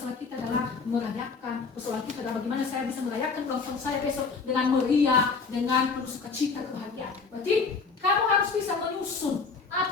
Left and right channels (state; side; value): quieter; right; 4.8 dB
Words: kita adalah merayakan, persoalan kita adalah bagaimana saya bisa merayakan ulang tahun saya besok dengan meriah, dengan penuh sukacita, kebahagiaan. Berarti kamu harus bisa menyusun